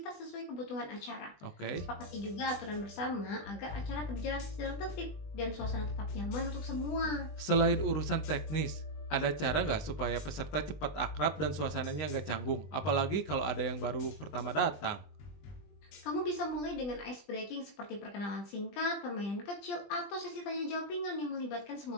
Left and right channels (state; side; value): late; right; 20 ms